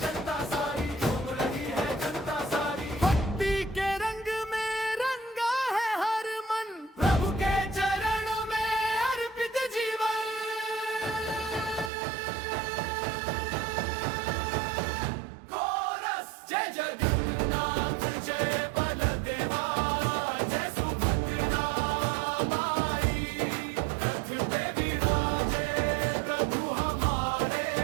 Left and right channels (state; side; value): drops out; left; at 11.9 s